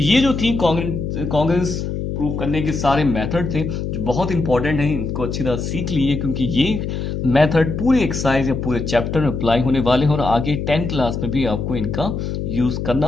ये जो थी कॉन्ग्रेंस प्रूव करने के सारे मेथड थे जो बहुत इंपॉर्टेंट हैं, इनको अच्छी तरह सीख लीजिए क्योंकि ये मेथड पूरे एक्सरसाइज या पूरे चैप्टर में अप्लाई होने वाले हैं और आगे 10th क्लास में भी आपको इनका यूज करना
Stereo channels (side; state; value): left; noise; hum, 3 dB below the sound